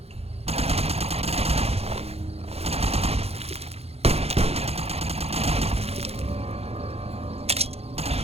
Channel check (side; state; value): left; late; 0.29 ms